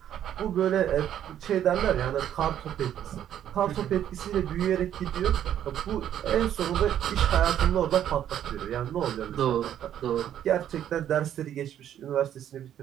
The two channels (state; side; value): quieter; left; 10.5 dB